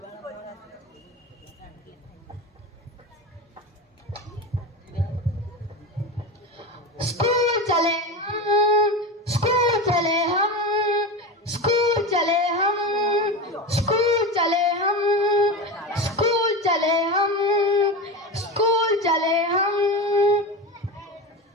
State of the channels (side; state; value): both; normal; correlation 0.23